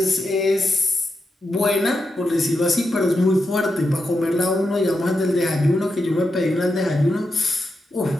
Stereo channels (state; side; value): normal; both; correlation 0.86